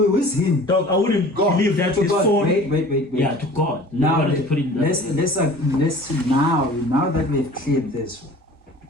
is him? Dog, I wouldn't God. believe that To his God. phone. Wait. Yeah, to God. Now You wanted to put it in that way. let's now that we've cleared this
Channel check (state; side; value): normal; both; correlation 0.45